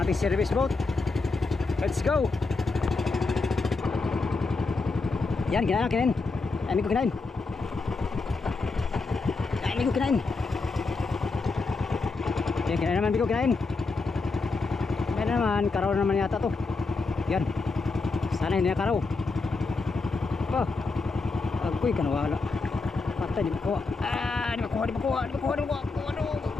ating service boat. Let's go. Yan, kinain, kinain. Ay, ko kinain. Ay, ko kinain. Yan, kinain naman, ko kinain. Yan naman, karaw naman yata to. Yan. Sana hindi na karaw. Oh. Agoy ka nawala. Patay, di makuha. Di makuha.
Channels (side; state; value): right; quieter; 3.9 dB